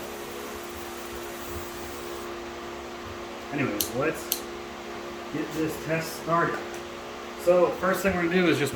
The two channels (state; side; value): identical; both; correlation 1.00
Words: Anyways, let's get this test started. So first thing we're going to do is just